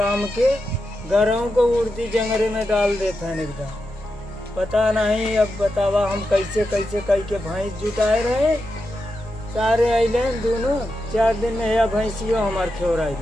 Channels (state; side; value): normal; both; correlation 0.88